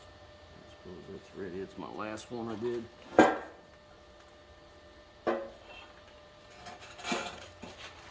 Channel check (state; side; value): identical; both; correlation 1.00